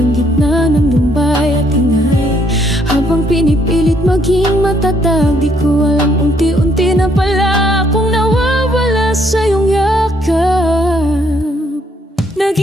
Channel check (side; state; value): both; normal; correlation 0.69